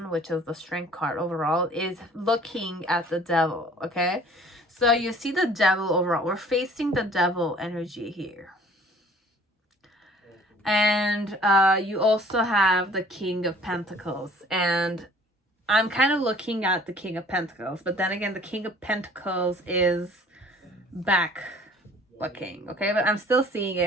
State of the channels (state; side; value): normal; both; correlation 0.52